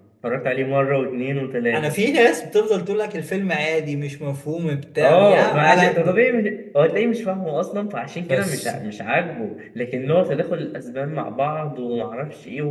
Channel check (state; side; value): identical; both; correlation 1.00